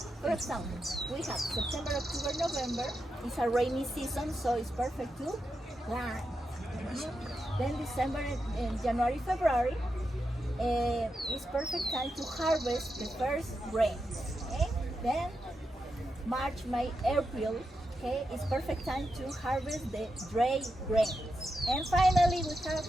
For example, we have September, October, November. It's a rainy season, so it's perfect to plant. Then December and January, February. It's perfect time to harvest the first grains. Okay? Then March, May, April. Okay, it's perfect time to harvest the dry grains. And finally, we have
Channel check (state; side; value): normal; both; correlation 0.87